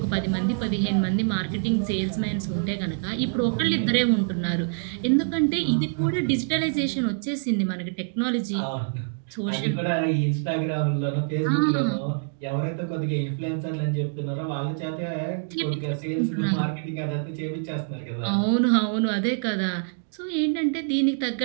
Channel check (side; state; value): left; silent; digital silence